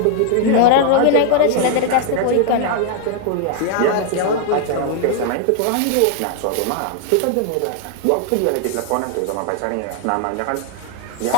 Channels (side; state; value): both; different; correlation 0.00